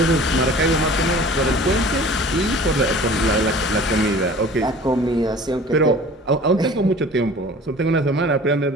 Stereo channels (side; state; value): both; normal; correlation 0.45